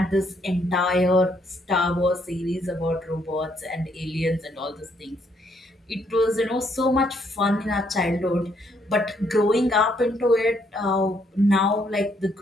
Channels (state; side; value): normal; both; correlation 0.71